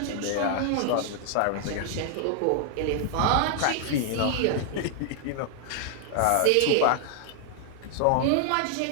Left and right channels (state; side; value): different; both; correlation 0.00